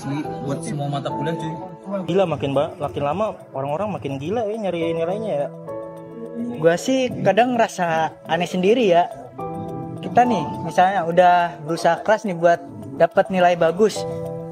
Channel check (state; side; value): identical; both; correlation 1.00